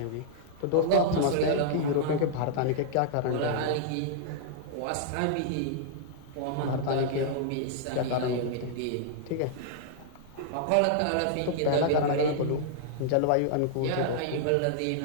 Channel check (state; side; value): different; both; correlation -0.01